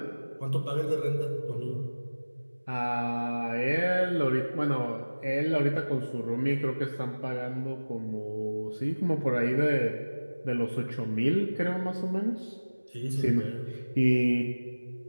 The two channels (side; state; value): both; inverted; correlation -1.00